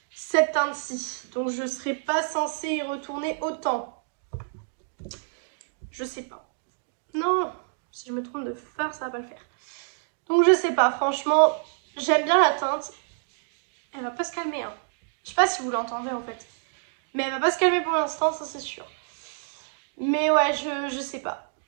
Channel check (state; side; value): silent; left; digital silence